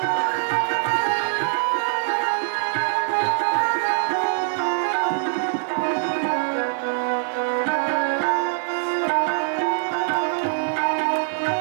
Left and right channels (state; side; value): silent; left; digital silence